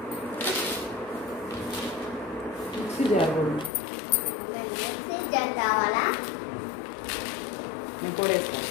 మిక్సీ జారు ఇంకోటి వేసుకో.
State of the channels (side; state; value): right; drops out; at 3.7 s